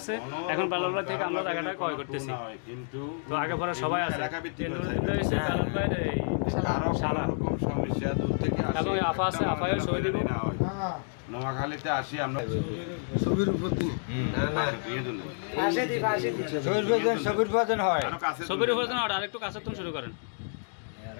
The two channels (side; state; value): right; silent; digital silence